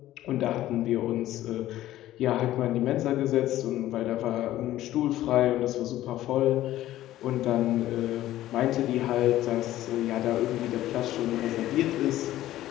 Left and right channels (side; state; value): right; quieter; 14.3 dB